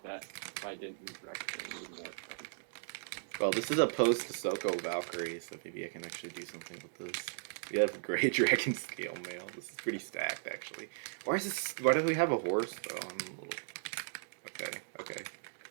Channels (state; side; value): silent; left; digital silence